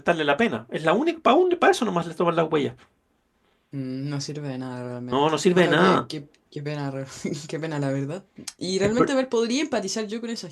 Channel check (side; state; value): both; identical; correlation 1.00